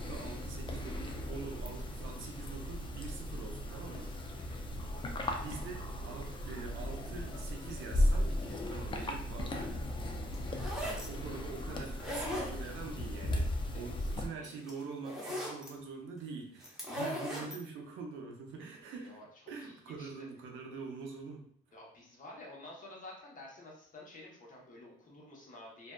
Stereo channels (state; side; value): normal; both; correlation 0.72